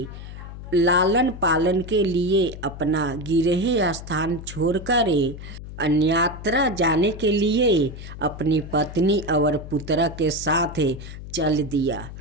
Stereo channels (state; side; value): noise; left; hum, 12 dB below the sound